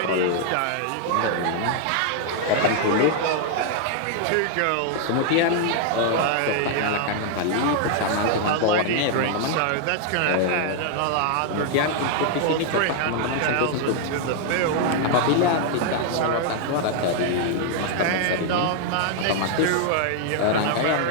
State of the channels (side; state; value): both; different; correlation 0.00